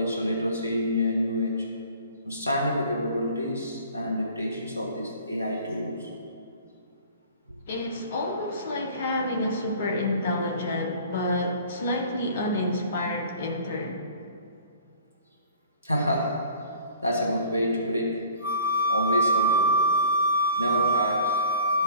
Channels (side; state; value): both; inverted; correlation -0.48